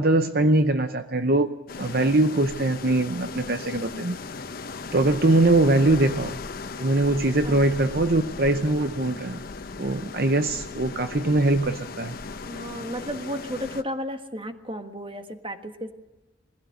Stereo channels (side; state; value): both; normal; correlation 0.45